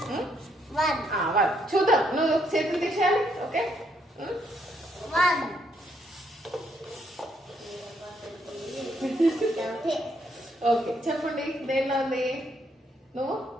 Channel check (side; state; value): both; normal; correlation 0.73